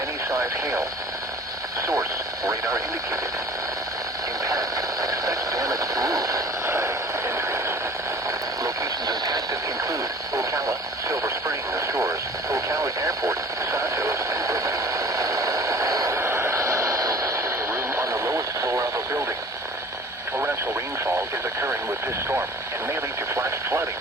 hail. Source, radar indicated. Impact, expect damage to roof, siding, and trees. Locations impacted include Ocala, Silver Spring, Shores, Ocala Airport, Santos, and Brigham. Room on the lowest floor of a building. Torrential rainfall is occurring with this storm and may lead to flash flooding.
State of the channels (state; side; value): normal; both; correlation 0.47